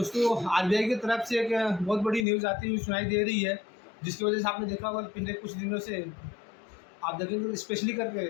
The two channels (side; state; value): right; drops out; at 2.2 s